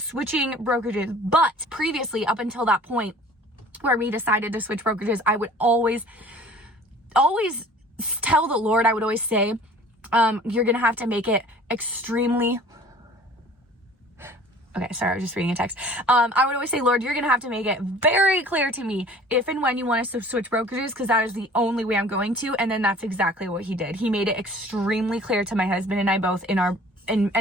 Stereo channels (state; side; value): normal; both; correlation 0.48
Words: brokerages. But previously, up until that point where we decided to switch brokerages, I would always tell the Lord, I would always say, you're going to have to make it extremely Okay, sorry, I was just reading a text. I would always say, Lord, you're going to have to make it very clear to me if and when you want us to switch brokerages, because that is the only way I'm going to. And then that's exactly what he did. He made it extremely clear to my husband and I both in